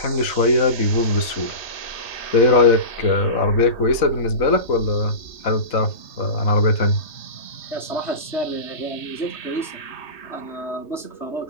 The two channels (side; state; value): right; late; 3.3 ms